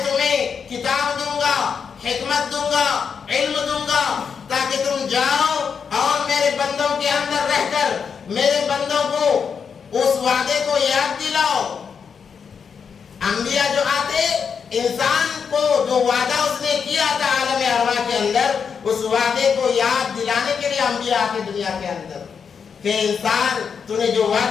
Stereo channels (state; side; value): quieter; right; 6.4 dB